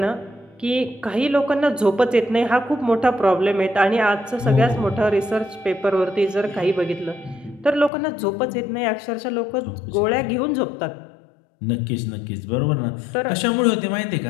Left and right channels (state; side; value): drops out; right; at 7.9 s